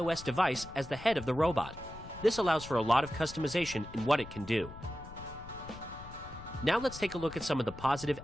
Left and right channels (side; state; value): left; noise; rumble, 15 dB below the sound